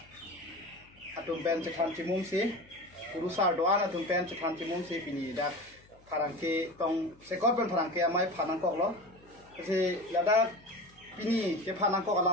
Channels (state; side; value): noise; left; hum, 28 dB below the sound